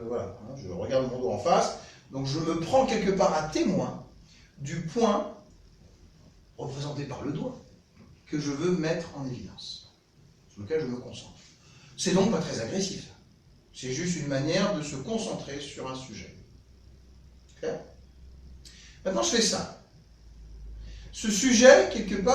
voilà, hein, je regarde mon doigt en face. Donc je me prends quelque part à témoin du point représenté par le doigt que je veux mettre en évidence, sur lequel je me concentre. C'est donc pas très agressif. C'est juste une manière de se concentrer sur un sujet. Clair? Maintenant, je fais ça. Ce sujet, quelque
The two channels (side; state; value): both; identical; correlation 1.00